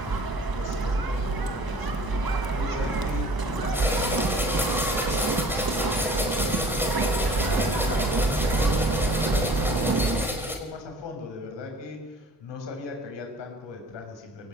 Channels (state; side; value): normal; both; correlation 0.49